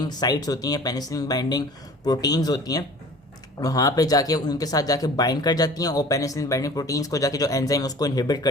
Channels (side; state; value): both; normal; correlation 0.45